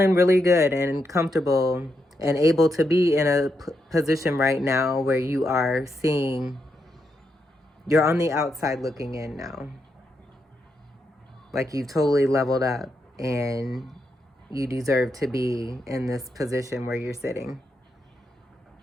really good and comfortable and able to be in a position right now where you are seeing, you're on the outside looking in now. Like you've totally leveled up and you deserve to be in this position where you're sitting.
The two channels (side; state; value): both; normal; correlation 0.82